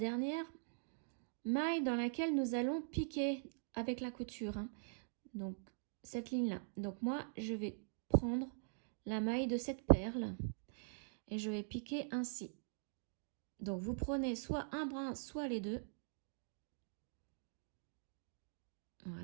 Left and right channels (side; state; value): left; silent; digital silence